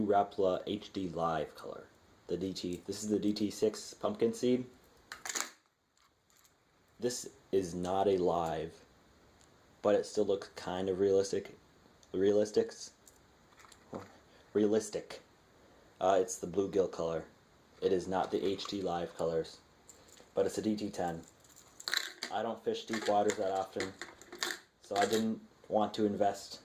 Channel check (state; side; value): identical; both; correlation 1.00